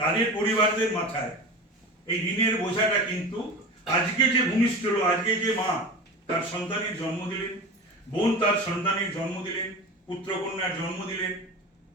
পরিবারদের মাথায় এই ঋণের বোঝাটা কিন্তু আজকে যে ভূমিষ্ঠ হলো, আজকে যে মা তার সন্তানের জন্ম দিলেন, বোন তার সন্তানের জন্ম দিলেন, পুত্রকন্যার জন্ম দিলেন,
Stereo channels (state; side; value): normal; both; correlation 0.31